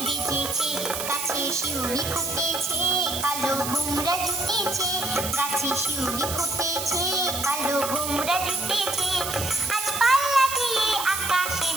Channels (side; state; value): right; noise; hiss, 5 dB below the sound